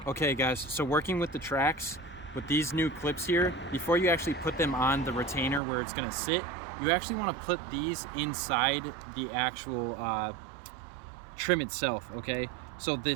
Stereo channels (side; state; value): left; drops out; at 5.6 s